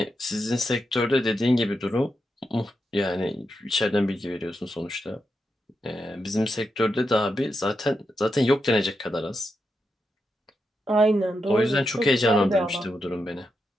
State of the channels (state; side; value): normal; both; correlation 0.86